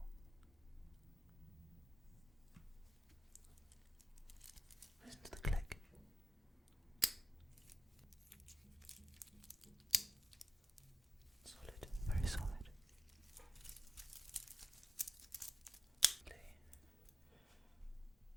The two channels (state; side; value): normal; both; correlation 0.93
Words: Listen to the click. Solid, very solid.